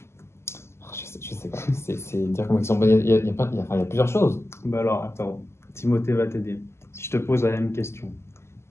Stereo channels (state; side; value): late; right; 0.13 ms